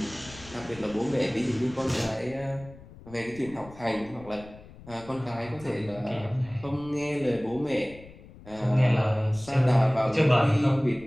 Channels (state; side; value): noise; left; rumble, 20 dB below the sound